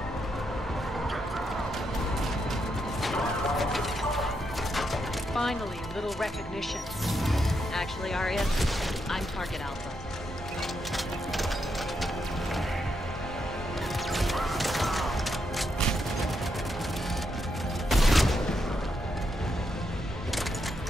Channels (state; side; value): normal; both; correlation 0.81